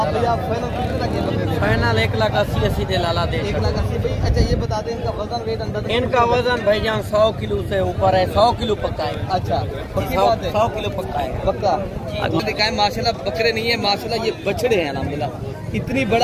भैया फाइनल कितने लगे बकरे? फाइनल 1,80,000 दे लाला दे 1,80,000 भाई। अच्छा ये बता दें इनका वजन वेट अंदर? इनका वजन भाईजान 100 किलो से ऊपर है, 100 किलो पक्का है। अच्छा पक्की बात है, 100 किलो पक्का है पक्का। आपको दिखाएं माशाल्लाह बकरे नहीं है माशाल्लाह, ये बछड़े हैं अल्हम्दुलिल्लाह। इतनी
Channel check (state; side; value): identical; both; correlation 1.00